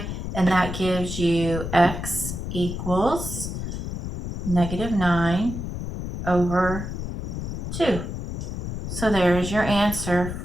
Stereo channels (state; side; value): noise; left; rumble, 6 dB below the sound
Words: and that gives you x equals negative 9 over 2. So there is your answer